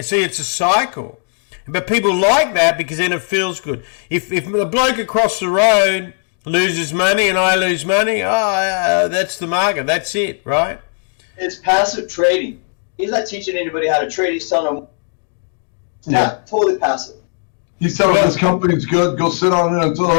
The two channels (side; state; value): right; silent; 60 dB below the other